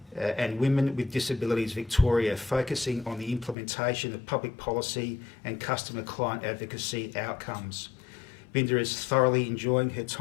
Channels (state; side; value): drops out; right; at 3.6 s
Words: and Women with Disabilities Victoria, focusing on the implementation of public policy and customer client advocacy outcomes. Binda is thoroughly enjoying her